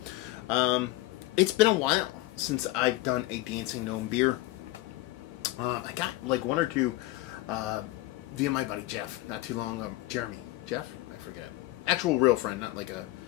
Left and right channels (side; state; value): right; quieter; 18.3 dB